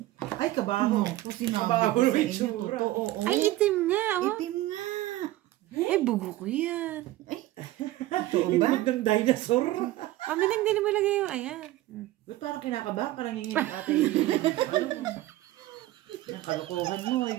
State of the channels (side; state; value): left; quieter; 16.2 dB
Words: Ay, kabaho. Kabaho ko sa yung inyo, itsura. totoo. Ay, itim nga, oh. Itim nga. Eh, bugo ko yan. Totoo ba? Itlog ng dinosaur. Mami Neng, hindi mo ilagay yung, ayan. Ba't parang kinakabahan? Parang hingin ate yung ang kalokohan mo,